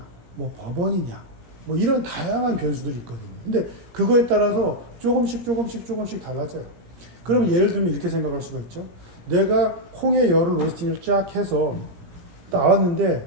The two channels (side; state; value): left; late; 17 ms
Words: 뭐 버번이냐 뭐 이런 다양한 변수들이 있거든요. 근데 그거에 따라서 조금씩 달라져요. 그럼 예를 들면 이렇게 생각할 수가 있죠. 내가 콩의 열을 로스팅을 쫙 해서